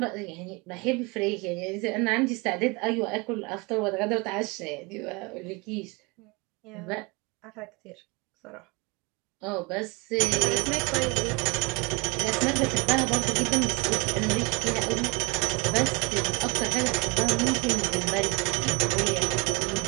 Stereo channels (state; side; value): quieter; left; 27.2 dB